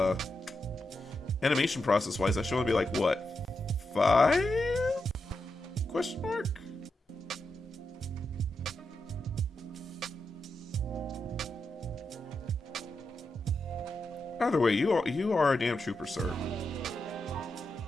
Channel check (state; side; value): normal; both; correlation 0.86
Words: animation process wise, that should only be like what, 5? Question mark. Either way, you are a damn trooper, sir.